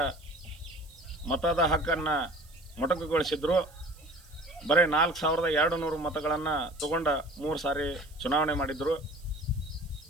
ಮತದ ಹಕ್ಕನ್ನು ಮೊಟಕುಗೊಳಿಸಿದ್ರು. ಬರೀ 4200 ಮತಗಳನ್ನು ತಗೊಂಡ 3 ಸಾರಿ ಚುನಾವಣೆ ಮಾಡಿದ್ರು.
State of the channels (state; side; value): noise; right; hiss, 26 dB below the sound